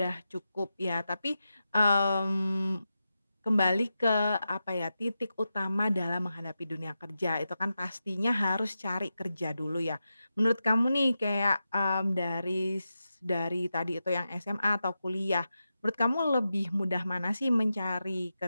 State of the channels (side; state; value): both; inverted; correlation -0.90